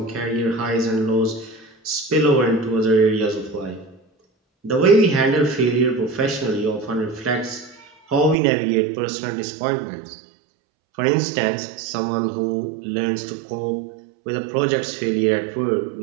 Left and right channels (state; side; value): drops out; left; at 8.3 s